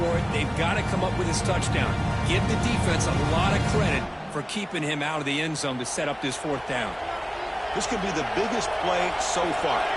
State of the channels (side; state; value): both; identical; correlation 1.00